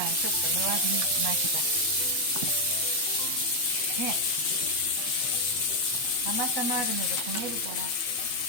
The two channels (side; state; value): right; late; 8.2 ms